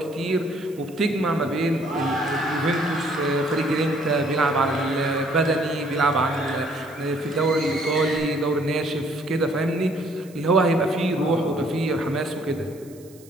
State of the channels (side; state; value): right; noise; hiss, 25 dB below the sound